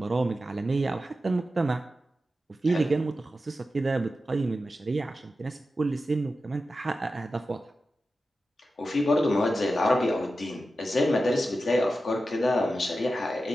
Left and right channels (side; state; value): both; normal; correlation 0.92